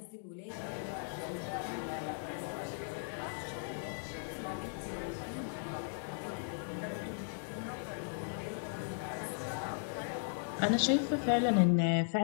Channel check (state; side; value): silent; right; digital silence